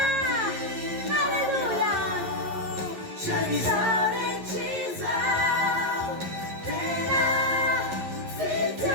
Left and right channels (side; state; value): left; late; 12 ms